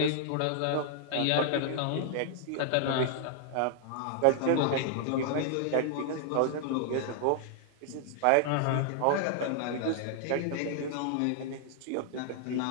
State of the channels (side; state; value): both; different; correlation 0.00